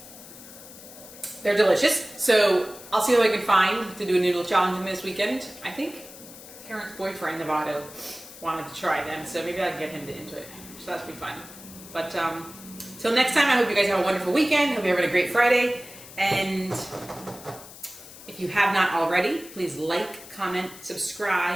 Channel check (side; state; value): left; noise; hiss, 17 dB below the sound